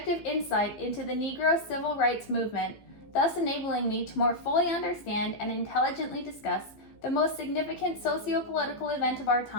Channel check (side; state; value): right; late; 15 ms